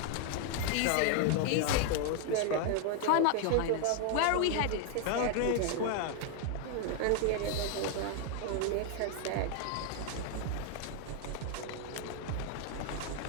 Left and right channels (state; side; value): different; both; correlation 0.00